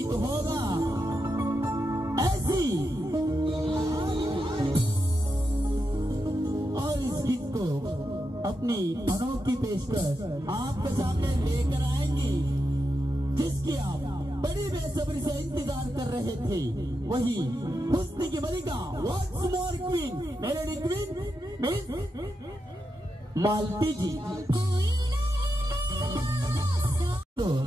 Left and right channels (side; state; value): both; normal; correlation 0.86